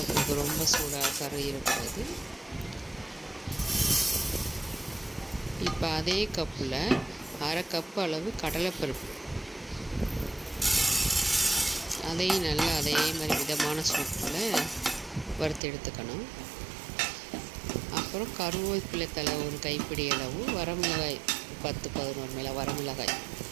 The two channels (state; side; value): drops out; left; at 15.6 s